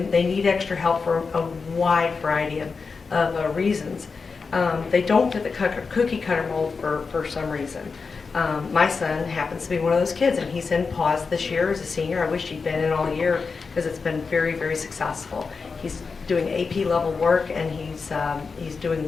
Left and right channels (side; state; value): right; quieter; 4.8 dB